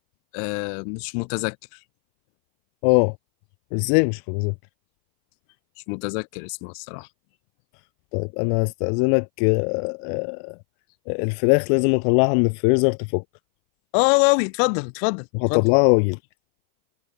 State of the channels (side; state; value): right; silent; 61 dB below the other